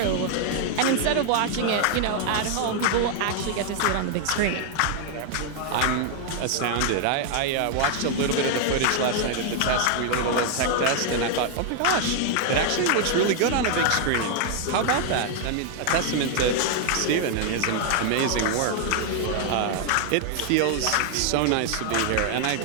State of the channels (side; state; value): both; different; correlation 0.00